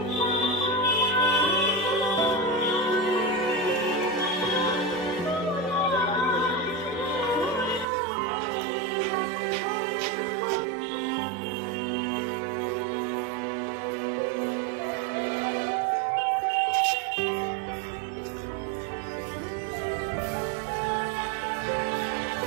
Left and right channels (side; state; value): left; drops out; at 7.9 s